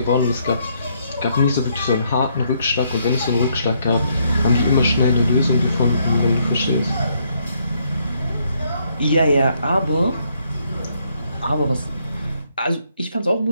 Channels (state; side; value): inverted; both; correlation -0.72